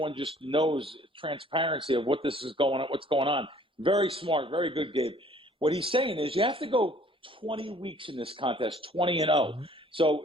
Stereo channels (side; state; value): both; normal; correlation 0.56